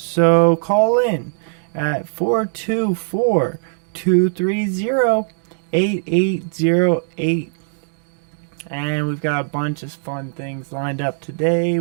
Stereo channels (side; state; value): left; silent; digital silence